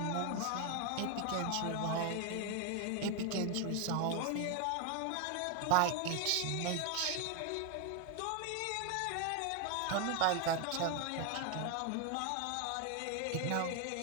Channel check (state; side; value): different; both; correlation 0.01